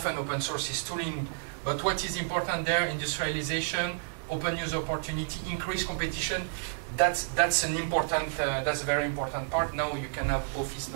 open source is tooling, but what is important there, industrialization, open use opportunity, increased competition, that's a very important part. Now you can have Office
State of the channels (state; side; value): silent; left; digital silence